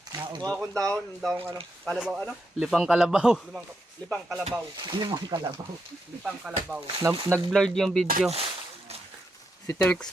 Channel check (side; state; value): both; normal; correlation 0.82